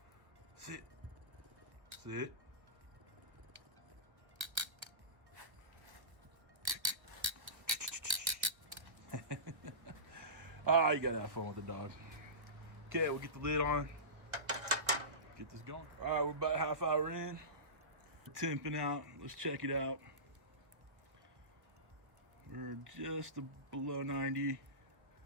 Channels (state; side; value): late; left; 1.3 ms